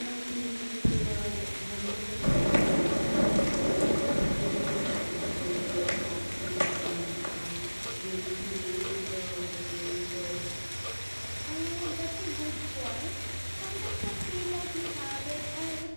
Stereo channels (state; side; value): inverted; both; correlation -1.00